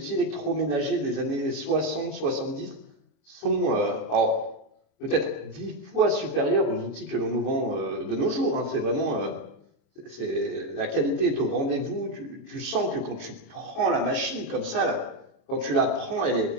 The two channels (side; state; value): right; late; 25 ms